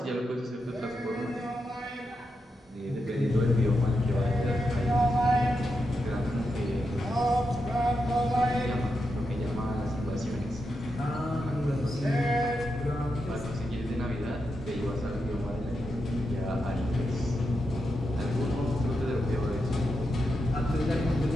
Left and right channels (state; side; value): normal; both; correlation 0.86